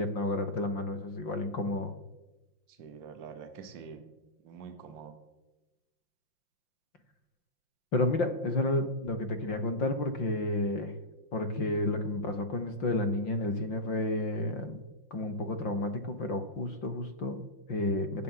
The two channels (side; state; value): right; late; 5.7 ms